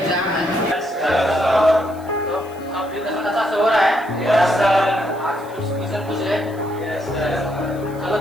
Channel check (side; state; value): left; noise; hiss, 25 dB below the sound